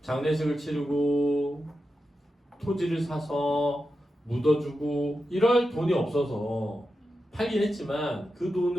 장례식을 치르고 토지를 사서 묻어주고 이럴 돈이 없어서 팔긴 했지만 그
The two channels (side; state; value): both; normal; correlation 0.90